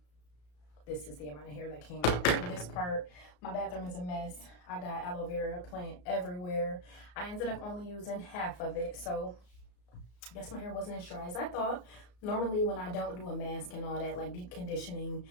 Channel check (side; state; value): right; late; 34 ms